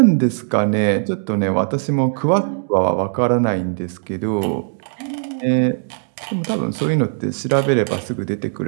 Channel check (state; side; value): silent; left; 66 dB below the other